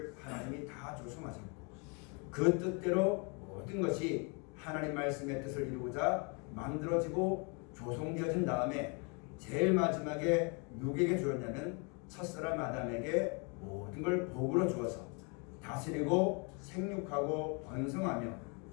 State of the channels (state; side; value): quieter; right; 34.0 dB